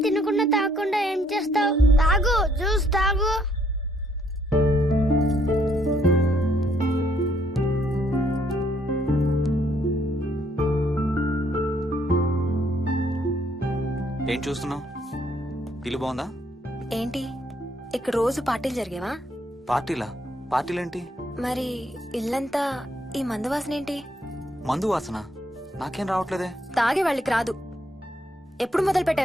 తినకుండా తాగకుండా ఏం చేస్తావు? తాగు, జ్యూస్ తాగు. ఏం చూస్తున్నావు? ఇల్లు బాగుందా? ఏంటి ఇక్కడ రోజు పార్టీలు జరిగేవా? పార్టీలా? పార్టీలేంటి? మరి ఇల్లంతా ఈ మందు వాసన ఏంటి? మందు వాసన నాకేం రావట్లేదే. తాగే వాళ్ళకి రాదు. ఎప్పుడు మొదలు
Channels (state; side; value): normal; both; correlation 0.69